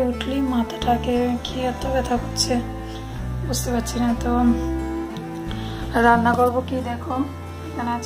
উঠলেই মাথাটাকে কি এত ব্যথা করছে বুঝতে পারছি না। তো রান্না করবো কি, দেখো এখানে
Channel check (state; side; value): identical; both; correlation 1.00